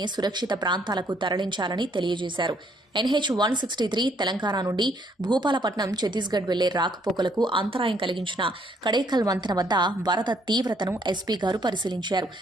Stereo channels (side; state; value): both; normal; correlation 0.67